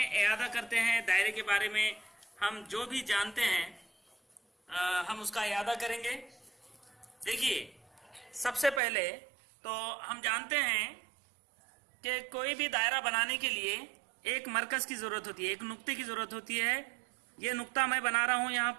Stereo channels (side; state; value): left; drops out; at 8.8 s